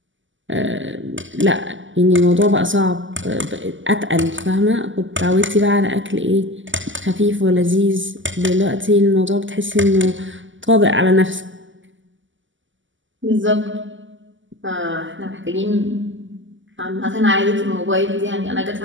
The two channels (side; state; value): left; late; 0.55 ms